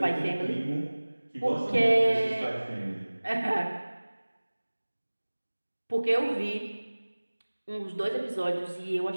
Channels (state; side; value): inverted; both; correlation -1.00